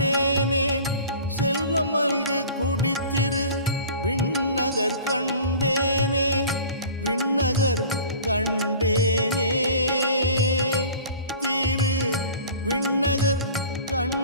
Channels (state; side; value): inverted; both; correlation -0.42